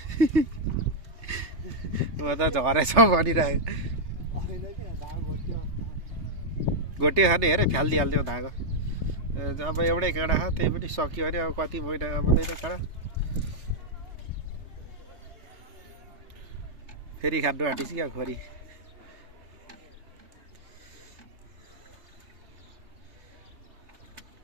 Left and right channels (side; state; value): left; late; 3.3 ms